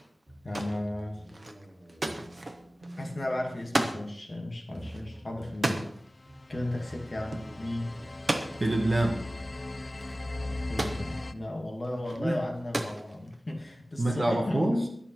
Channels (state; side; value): normal; both; correlation 0.96